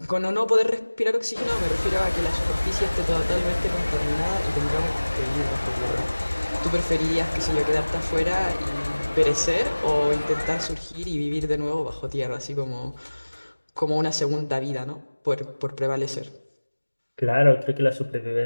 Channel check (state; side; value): inverted; both; correlation -1.00